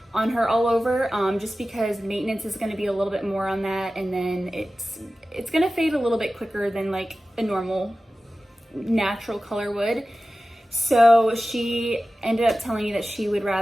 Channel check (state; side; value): normal; both; correlation 0.95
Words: on her all over, just because maintenance is going to be a little bit more on that, and then it's going to fade a little bit quicker than like a normal natural color would. So she ended up telling me that she would